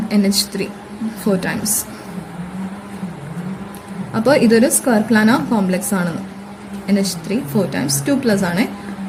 NH3 4 ടൈംസ്. അപ്പോൾ ഇതൊരു സ്ക്വയർ പ്ലാനർ കോംപ്ലക്സ് ആണ്. NH3 4 ടൈംസ് 2+ ആണ്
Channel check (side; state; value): both; identical; correlation 1.00